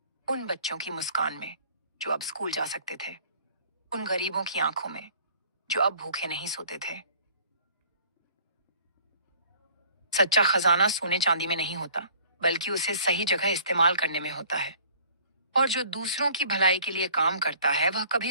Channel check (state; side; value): inverted; both; correlation -0.53